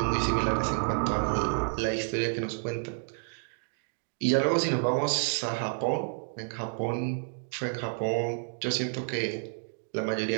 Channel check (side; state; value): left; silent; digital silence